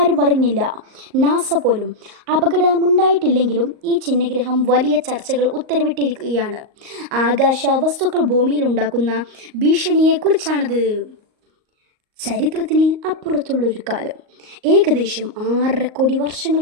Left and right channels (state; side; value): late; left; 38 ms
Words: അറിഞ്ഞില്ല, നാസ പോലും. അപകടമുണ്ടായിട്ടില്ലെങ്കിലും ഈ ചിഹ്നഗ്രഹം വലിയ ചർച്ചകൾ ഉത്തരവിട്ടിരിക്കുകയാണ്. ആകാശ വസ്തുക്കൾ ഭൂമിയിലുണ്ടാക്കുന്ന ഭീഷണിയെക്കുറിച്ചാണത്. ചരിത്രത്തിന് അപ്പുറത്തുള്ളൊരു കാലം, ഏകദേശം 6.5 കോടി